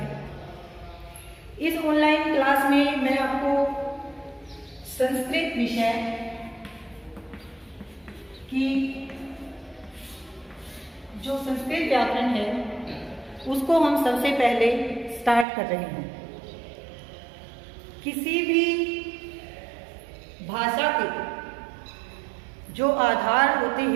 इस ऑनलाइन क्लास में मैं आपको संस्कृत विषय की जो संस्कृत व्याकरण है उसको हम सबसे पहले स्टार्ट कर रहे हैं। किसी भी भाषा के जो आधार होते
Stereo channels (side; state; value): left; drops out; at 15.5 s